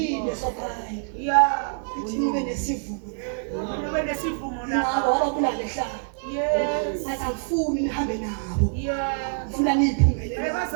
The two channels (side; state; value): left; silent; 61 dB below the other